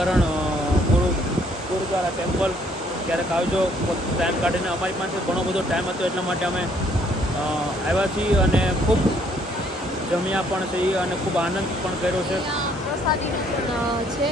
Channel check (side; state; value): both; normal; correlation 0.65